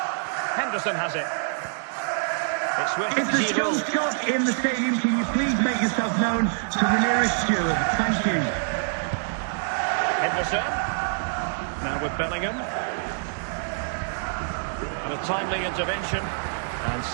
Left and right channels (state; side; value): silent; left; digital silence